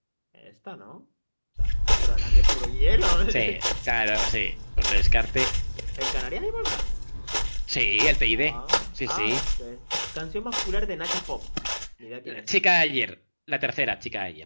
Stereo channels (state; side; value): inverted; both; correlation -1.00